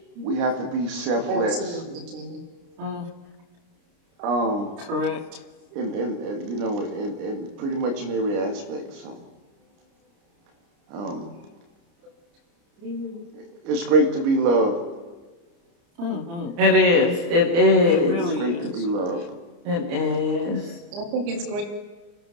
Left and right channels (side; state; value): left; late; 29 ms